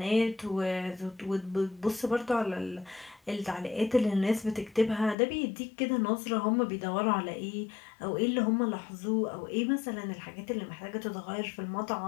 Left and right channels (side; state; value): right; drops out; at 5.2 s